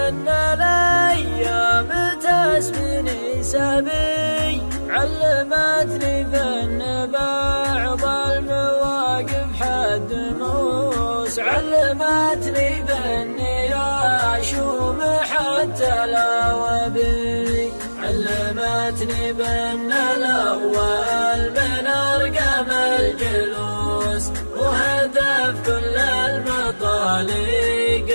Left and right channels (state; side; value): inverted; both; correlation -1.00